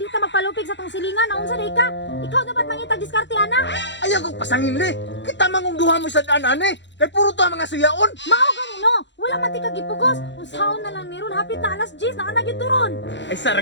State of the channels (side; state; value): right; late; 0.52 ms